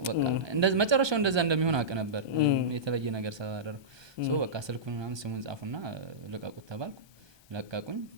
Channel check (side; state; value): left; late; 1.2 ms